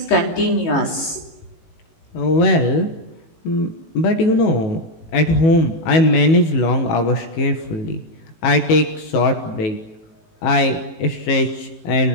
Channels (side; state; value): right; late; 18 ms